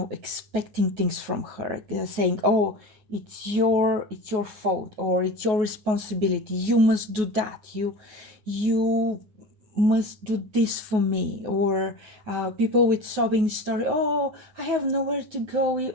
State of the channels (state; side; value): late; left; 9.4 ms